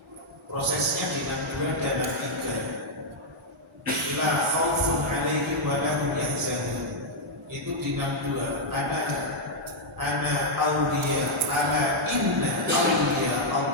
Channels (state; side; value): normal; both; correlation -0.03